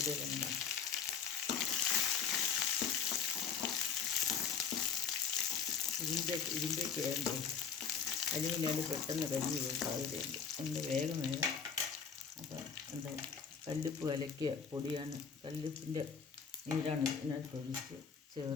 ഇടാം. ഇരുമ്പേക്ക് വേണ്ടേ, അലുമിനിയാണ്ട് പെട്ടെന്ന് കരിഞ്ഞു പോകും സാധ്യതയുണ്ട്. അതുകൊണ്ട് വേഗം അപ്പം എന്താ കല്ലുപ്പ് കലക്കിയ പൊടിയാണ്, കല്ലുപ്പിൻ്റെ നീരാണ് ഇതിനകത്ത് ഒഴിച്ച്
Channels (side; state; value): right; quieter; 6.5 dB